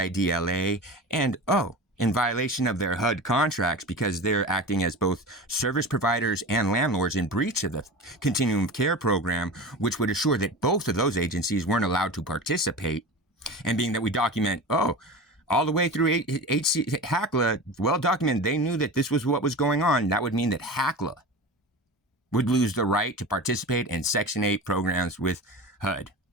and in violation of their HUD contracts because they're acting as both service providers and landlords in breach of the Continuum of Care program, which would assure that both of those agencies weren't allowed to participate. And being that we document, all the way through HACLA, well documented, they knew that this was what was going on. That would mean that HACLA would lose the right to participate in Section 8 programs with HUD.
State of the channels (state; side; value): normal; both; correlation 0.30